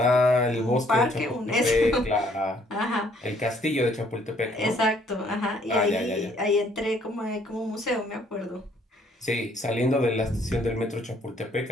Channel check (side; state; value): both; normal; correlation 0.64